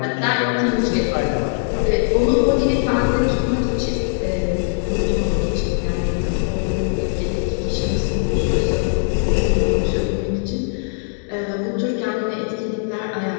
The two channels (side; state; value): right; silent; digital silence